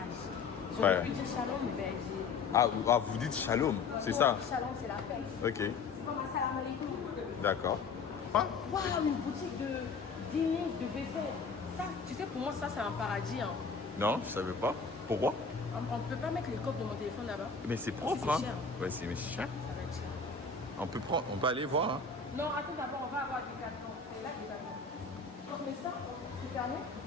Je Ouais. pu dire shalom, mais ben, j'ai. Ah, vous dites shalom, c'est ça? Shalom, c'est la paix. Ok. C'est comme un salam alaikum. D'accord. Ah, Waouh, une boutique de dîner, de vaisselle. Ça, tu sais, pour moi, ça, c'est un paradis. Hein. non, je savais pas. Pourquoi? On ne peut pas mettre les coques de mon téléphone là-bas. Mais c'est propre, C'est hein? cher. Ouais, c'est mais cher. Ça va être cher. On peut aller voir, hein? Non, attends d'abord, on va avoir des cartons. C'est là que des cartons. Mais ça, c'est fermé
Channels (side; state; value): right; quieter; 4.8 dB